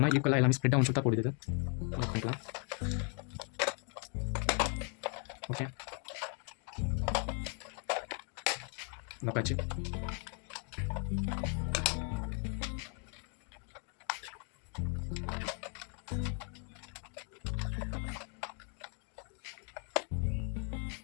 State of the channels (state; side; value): quieter; right; 39.4 dB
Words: ஈக்குவலாக எல்லாமே ஸ்ப்ரெட் ஆகும் சொல்லிட்டு போடுது. பண்ணிக்கலாம். ஓகே, நப்பாச்சு.